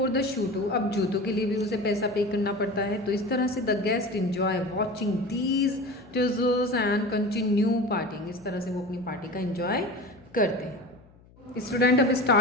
the shoe too, अब जूतों के लिए भी उसे पैसा पे करना पड़ता है। तो इस तरह से the guest enjoy watching these tussles and continue parting, इस तरह से वो अपनी पार्टी का इंजॉय करते हैं। स्टूडेंट अब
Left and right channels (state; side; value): noise; left; hum, 26 dB below the sound